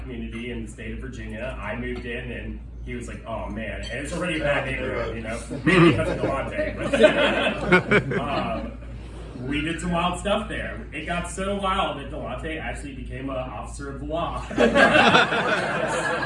community in the state of Virginia. I moved in and he was like, oh man, and it's already a bad neighborhood, you know, maybe because of Delante. But, we did some wild stuff there. It got so wild that Delante actually became an officer of the law. So all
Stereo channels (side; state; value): both; identical; correlation 1.00